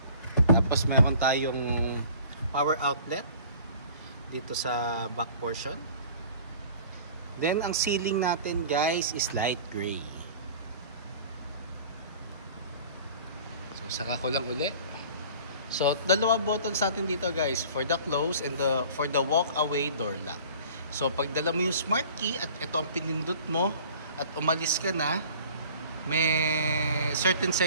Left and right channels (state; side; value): inverted; both; correlation -0.47